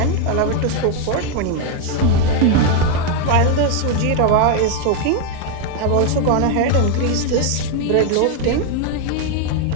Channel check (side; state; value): both; different; correlation 0.01